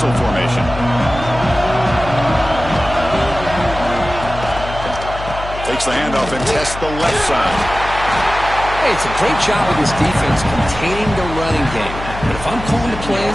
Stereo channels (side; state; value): left; noise; hum, 10 dB below the sound